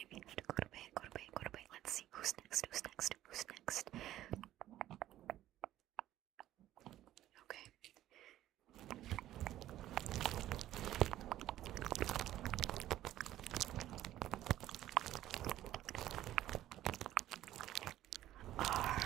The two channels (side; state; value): left; quieter; 13.5 dB